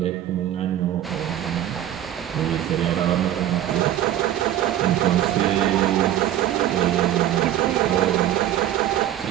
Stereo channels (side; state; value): left; quieter; 12.1 dB